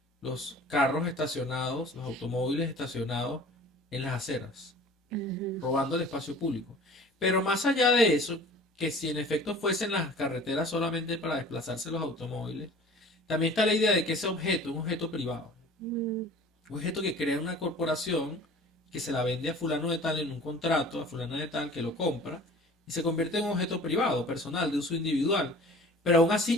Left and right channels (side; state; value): both; normal; correlation 0.45